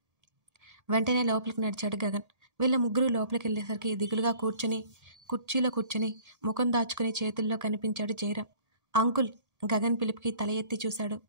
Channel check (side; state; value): left; late; 1.8 ms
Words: వెంటనే లోపలికి నడిచాడు గగన్. వీళ్ళ ముగ్గురు లోపలికి వెళ్ళేసరికి దిగులుగా కుర్చీలో కూర్చొని ముఖం దాచుకుని చేతుల్లో కనిపించాడు జయరాం. అంకుల్, గగన్ పిలుపుకి తల ఎత్తి చూశాడు.